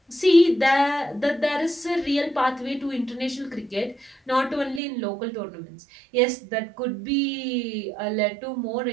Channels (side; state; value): left; drops out; at 4.8 s